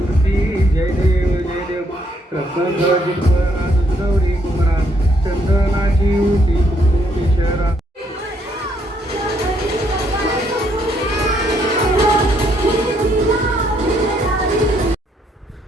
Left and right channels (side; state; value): both; normal; correlation 0.71